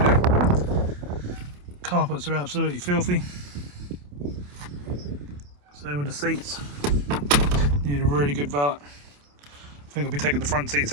to do. Carpets are absolutely filthy. Same with the seats. Need a really good valet. I think I'll be taking the front seats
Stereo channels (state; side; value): late; left; 28 ms